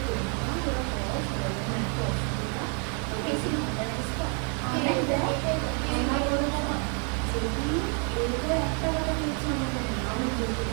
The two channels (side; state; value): left; quieter; 39.0 dB